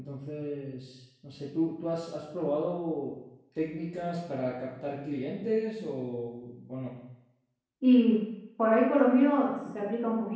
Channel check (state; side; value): identical; both; correlation 1.00